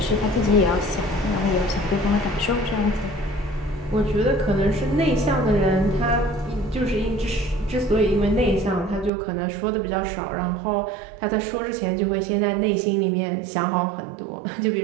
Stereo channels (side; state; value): left; drops out; at 9.1 s